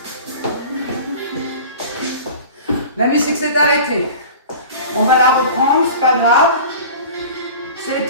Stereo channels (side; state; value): both; inverted; correlation -0.39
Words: La musique s'est arrêtée. On va la reprendre, c'est pas grave. C'est les